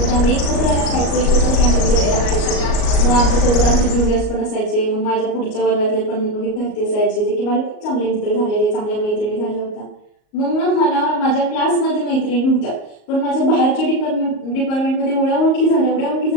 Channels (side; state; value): right; late; 38 ms